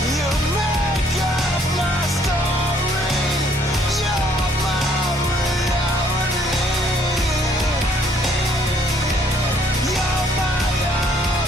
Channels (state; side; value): normal; both; correlation 0.64